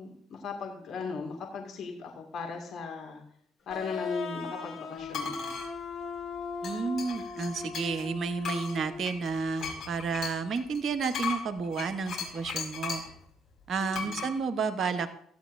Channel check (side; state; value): both; normal; correlation 0.71